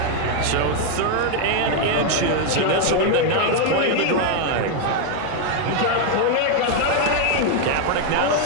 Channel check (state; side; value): different; both; correlation 0.00